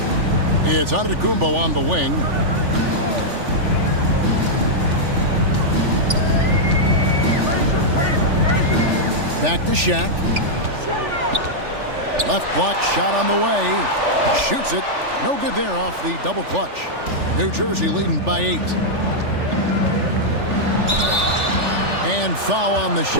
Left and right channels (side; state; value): left; late; 3.4 ms